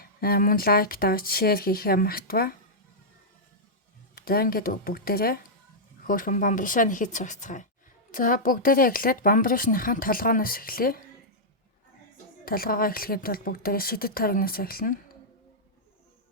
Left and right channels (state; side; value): normal; both; correlation -0.09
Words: Мөн лайк даа, шеэр хийхээ мартава. За ингээд бүгдээрээ хөөрхөн бамбаршаа нэхэж сурцгаая. За бүгдээрээ эхлээд бамбаршныхаа толгооноос эхлэе. Толгоогоо эхлэхэд бол бүгдээрээ шидэт тойрогноос эхэлнэ.